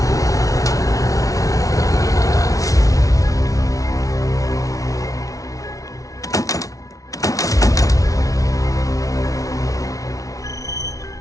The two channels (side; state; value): right; late; 0.17 ms